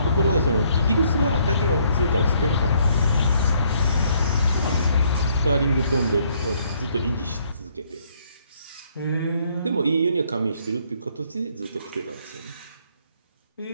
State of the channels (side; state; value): both; inverted; correlation -0.67